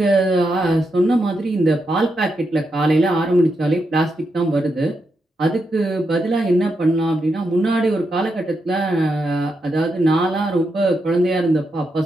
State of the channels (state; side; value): normal; both; correlation 0.84